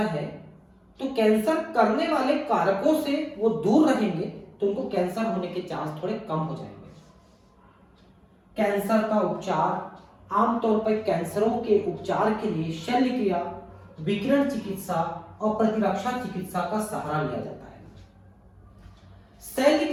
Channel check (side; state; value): both; identical; correlation 1.00